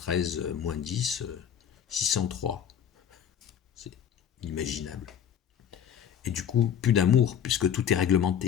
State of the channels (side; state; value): right; quieter; 8.8 dB